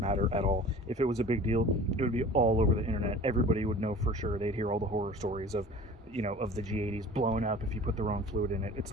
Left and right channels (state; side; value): normal; both; correlation 0.43